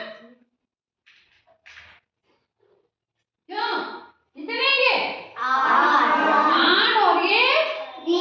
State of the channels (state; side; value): identical; both; correlation 1.00